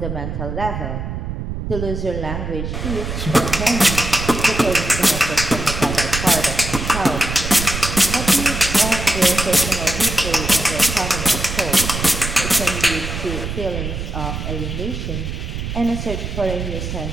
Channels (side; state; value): right; noise; rumble, 5 dB below the sound